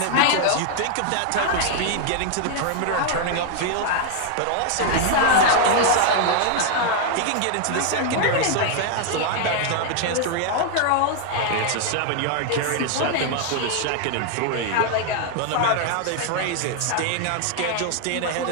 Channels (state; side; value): different; both; correlation 0.00